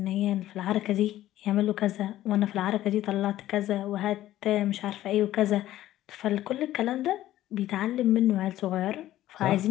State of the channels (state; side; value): quieter; right; 14.0 dB